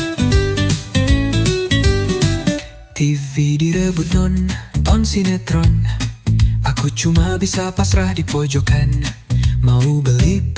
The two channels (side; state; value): both; identical; correlation 1.00